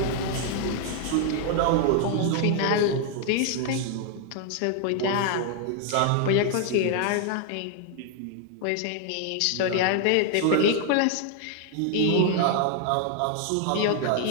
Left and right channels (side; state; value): both; different; correlation 0.00